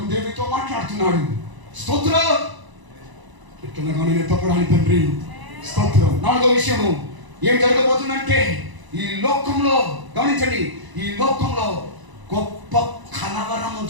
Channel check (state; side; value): late; left; 1.0 ms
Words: దేవునితో మాట్లాడుతున్నాడు. స్తోత్రం. ఎట్లనగా నేను ఎత్తపడాలి తండ్రి. స్తోత్రం. నాలుగో విషయము ఏం జరగబోతుందంటే, ఈ లోకంలో గమనించండి, ఈ లోకంలో గొప్ప కలవరము